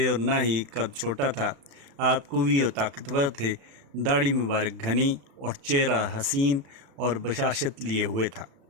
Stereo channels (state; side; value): late; left; 36 ms